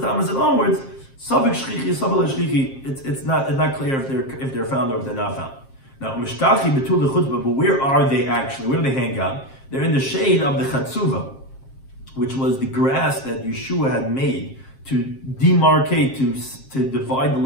and onwards, Savik Shlichi, Savik Shlichi, it's not clear if they're found or if they're not found. Now, Mishtachi betul the chutbah, but where are they actually? Where do they hang out? They're in the shade of the Chatzuva, which was the grass that Yeshua had made to demarcate, to divide the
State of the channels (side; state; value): right; late; 7.5 ms